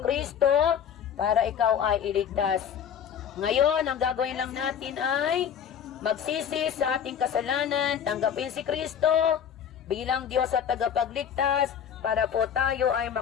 para ikaw ay iligtas. Ngayon, ang gagawin lang natin ay magsisi sa ating kasalanan, tanggapin si Kristo bilang Diyos at tagapagligtas para po tayo ay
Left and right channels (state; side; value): quieter; right; 8.4 dB